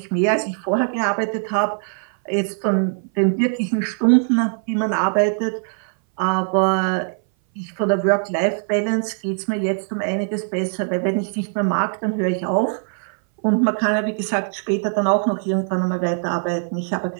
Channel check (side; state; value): left; silent; 59 dB below the other